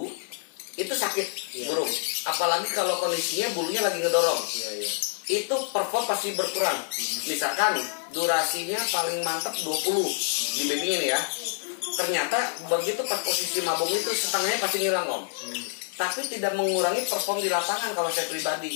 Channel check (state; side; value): silent; right; 60 dB below the other